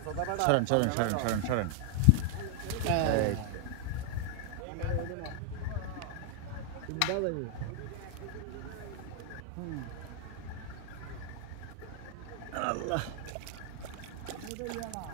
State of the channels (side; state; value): both; different; correlation 0.00